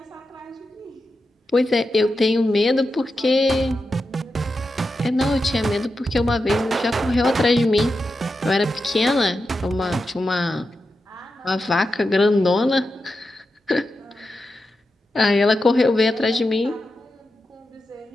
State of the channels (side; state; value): both; normal; correlation 0.89